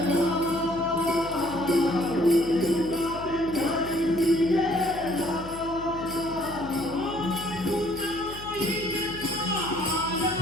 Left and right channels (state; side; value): noise; left; hum, 15 dB below the sound